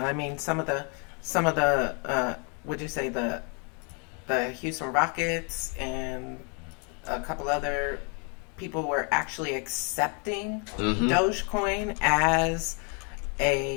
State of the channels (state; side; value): quieter; right; 36.4 dB